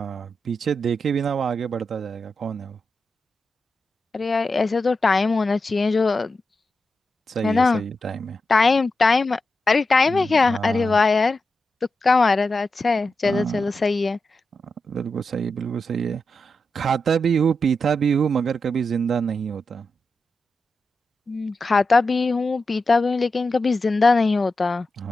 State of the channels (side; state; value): both; normal; correlation 0.89